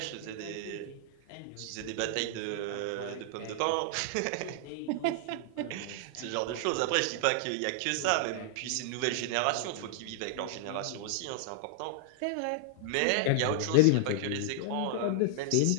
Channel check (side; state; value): both; different; correlation -0.01